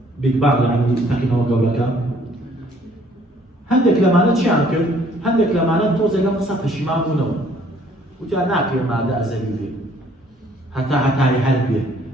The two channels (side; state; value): both; normal; correlation 0.61